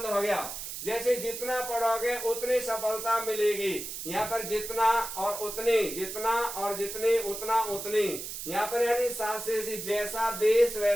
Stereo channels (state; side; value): noise; right; hiss, 7 dB below the sound